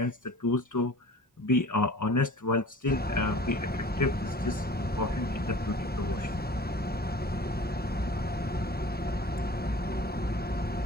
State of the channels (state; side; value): normal; both; correlation 0.44